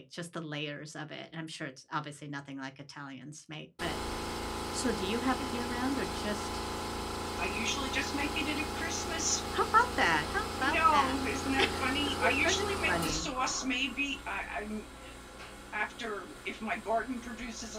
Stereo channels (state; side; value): identical; both; correlation 1.00